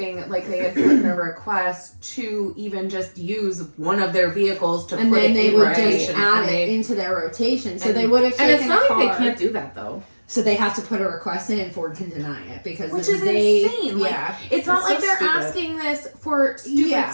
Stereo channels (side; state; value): both; inverted; correlation -1.00